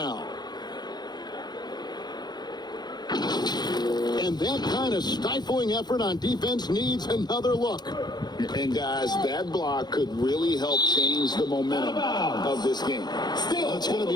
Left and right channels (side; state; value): right; late; 0.20 ms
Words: And that kind of stifling effort on defense needs another look. And guys, that block could really help change the momentum of this game. It's going to